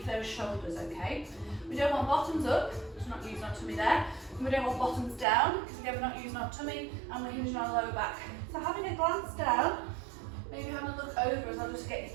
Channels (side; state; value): left; drops out; at 5.2 s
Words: those shoulders, okay? We don't want bottoms up, because we're not using our tummy there. And we don't want bottoms down, because again, we're not using our tummy and we're hinging our lower back. So having a glance down, maybe having a look over as I'll just get your